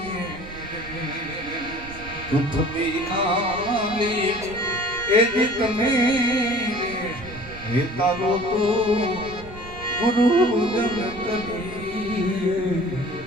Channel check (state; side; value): noise; right; rumble, 16 dB below the sound